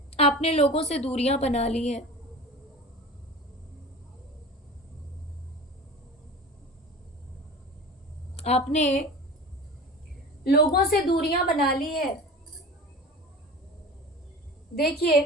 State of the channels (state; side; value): normal; both; correlation 0.35